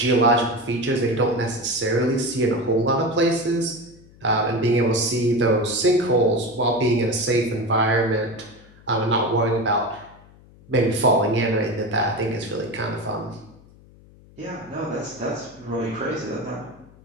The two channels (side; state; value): left; noise; hum, 25 dB below the sound